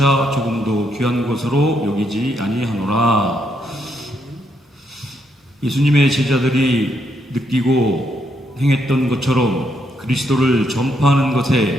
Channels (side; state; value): both; normal; correlation 0.76